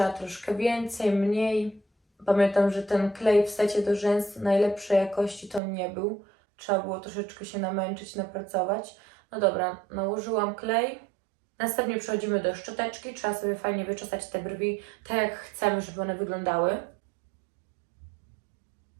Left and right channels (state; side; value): drops out; left; at 5.6 s